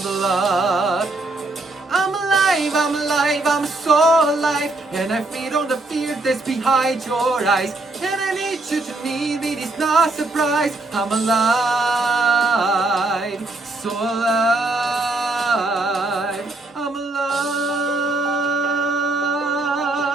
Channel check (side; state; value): left; quieter; 3.0 dB